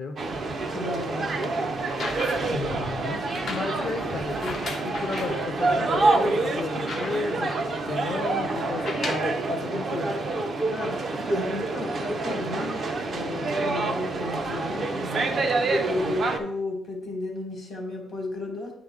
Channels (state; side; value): normal; both; correlation 0.79